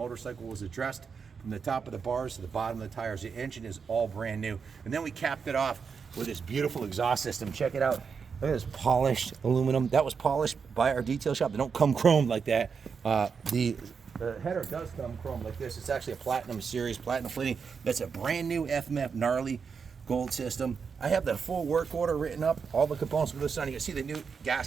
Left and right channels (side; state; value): left; quieter; 5.9 dB